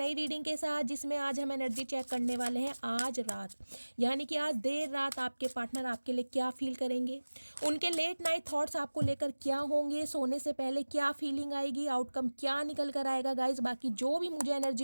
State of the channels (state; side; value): inverted; both; correlation -1.00